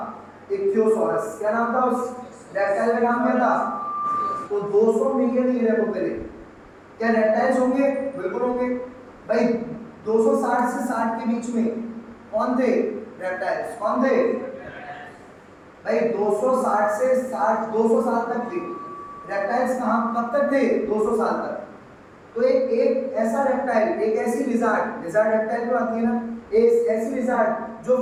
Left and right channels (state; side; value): identical; both; correlation 1.00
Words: इक्थियोसॉरस। क्या नाम था उस रेप्टाइल का नाम, क्या था। तो 200 मिलियन ईयर को पहले क्या रेप्टाइल्स होंगे, बिल्कुल होंगे। भाई 260 से 60 के बीच में कौन थे, रेप्टाइल्स कौन थे भाई। 260 से 60 200 साल तक थे रेप्टाइल्स। कहाँ कब तक थे, 200 साल तक। तो एक ऐसा रेप्टाइल, एक ऐसी लिजार्ड, लिजार्ड रेप्टाइल जो आती है ना, एक ऐसी लिजार्ड जो